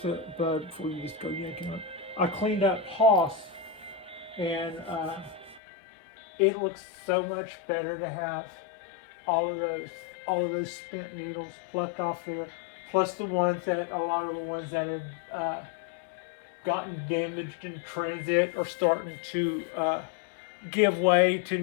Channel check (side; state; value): right; drops out; at 5.6 s